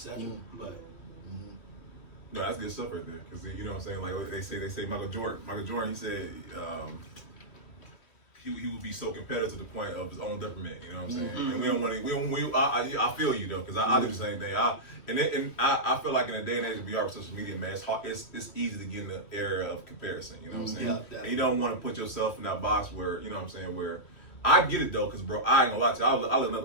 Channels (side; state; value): right; late; 3.1 ms